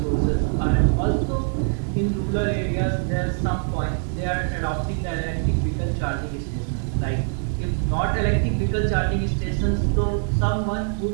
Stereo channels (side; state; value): left; silent; 57 dB below the other